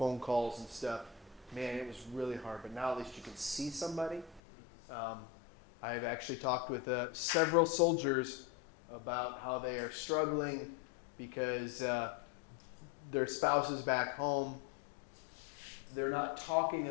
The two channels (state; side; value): drops out; right; at 4.4 s